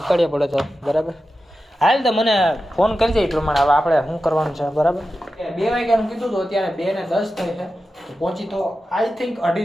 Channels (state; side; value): normal; both; correlation 0.92